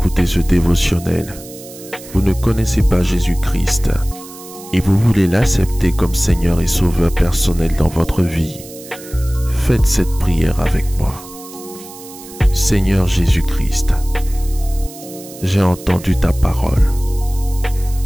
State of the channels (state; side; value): noise; right; hiss, 17 dB below the sound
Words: ce dévotionnel. Vous ne connaissez pas Jésus-Christ et vous voulez l'accepter comme Seigneur et Sauveur personnel dans votre vie. Faites cette prière avec moi. Seigneur Jésus-Christ, j'ai entendu ta parole.